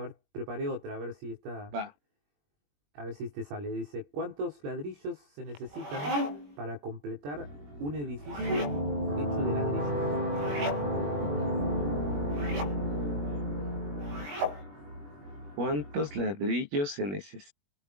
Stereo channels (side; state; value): left; late; 21 ms